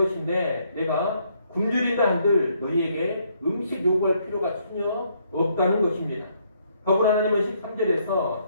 내가 굶주린다 한들 너희에게 음식 요구할 필요가 전혀 없다는 것입니다. 더불어 하나님은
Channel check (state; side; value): inverted; both; correlation -0.71